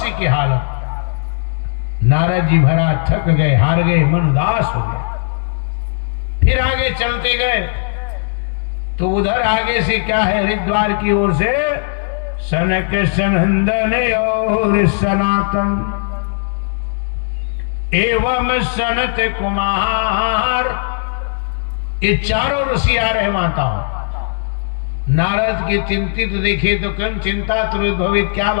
की हालत। नारद जी भरा थक गए, हार गए, मन उदास हो गया। फिर आगे चलते गए तो उधर आगे से क्या है? हरिद्वार की ओर से सनक सनंदन और सनातन एवं सनत कुमार, ये चारों ऋषि आ रहे माताओं। नारद के चिंतित देखे तो कन चिंता त्रोद्भवित, क्या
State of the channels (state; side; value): silent; right; digital silence